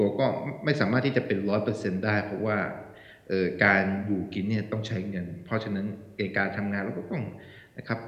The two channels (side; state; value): both; identical; correlation 1.00